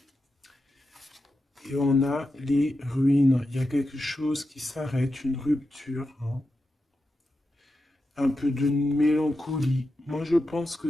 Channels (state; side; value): normal; both; correlation 0.89